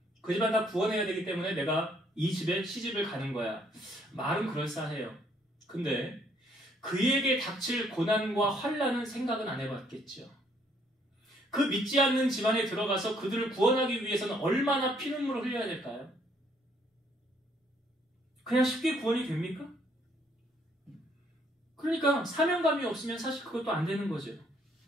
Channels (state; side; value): normal; both; correlation 0.67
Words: 그 집안 다 구원해야 되기 때문에 내가 이 집에 시집을 가는 거야. 말은 그럴싸해요. 근데 그에게 닥칠 고난과 환난은 생각은 안 해봤겠죠. 그 믿지 않는 집안에 들어가서 그들을 구원하기 위해서는 얼마나 피눈물을 흘려야 될까요? 그냥 쉽게 구원이 됩니까? 그러니까 사명감이 없으면 사실 그것도 안 되는 거죠.